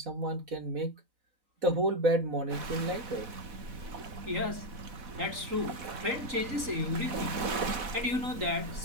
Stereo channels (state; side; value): late; left; 4.1 ms